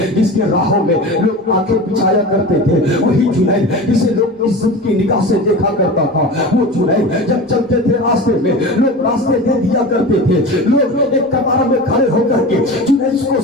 جس کے راہوں میں لوگ آنکھیں بچھایا کرتے تھے، وہی جنید جسے لوگ عزت کی نگاہ سے دیکھا کرتا تھا، وہ جنید جب چلتے تھے راستے میں لوگ راستے دے دیا کرتے تھے، لوگ ایک قطار میں کھڑے ہو کر کے جنید کو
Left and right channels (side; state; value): both; normal; correlation 0.31